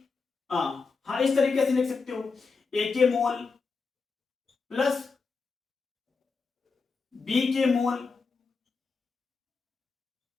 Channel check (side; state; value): right; quieter; 4.6 dB